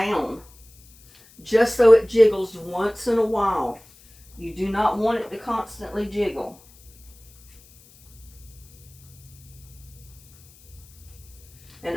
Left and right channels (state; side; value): noise; left; hiss, 26 dB below the sound